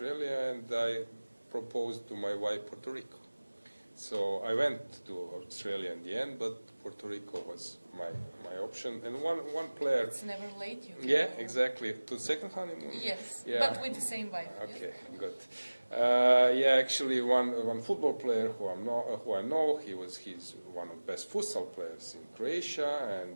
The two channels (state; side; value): inverted; both; correlation -1.00